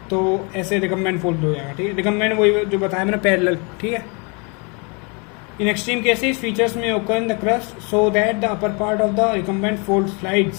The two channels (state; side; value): quieter; right; 32.5 dB